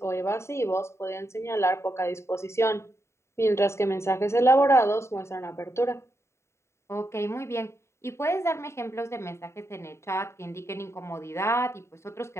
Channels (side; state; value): right; late; 0.13 ms